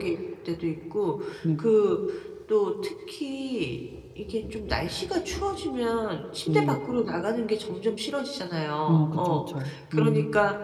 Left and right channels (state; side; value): identical; both; correlation 1.00